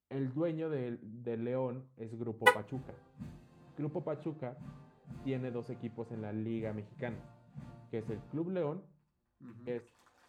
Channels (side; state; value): both; identical; correlation 1.00